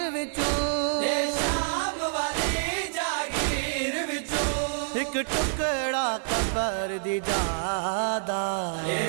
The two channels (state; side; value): silent; left; digital silence